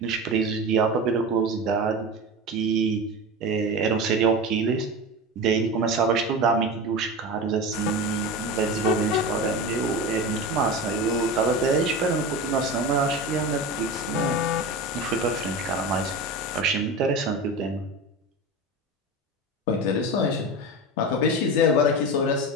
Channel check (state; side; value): normal; both; correlation 0.25